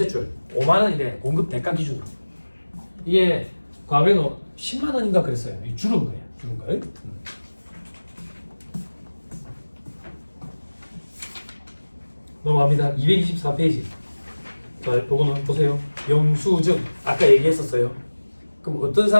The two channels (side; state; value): both; inverted; correlation -1.00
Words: 줄 5만 원이래. 공급 대가 기준으로. 이게 과거에는 10만 원인가 그랬어요. 이 줄은 거예요. 줄은 거예요. 넘어갑니다. 224페이지. 자, 요거는 보세요. 영수증. 아까 얘기했었어요. 그럼 어떤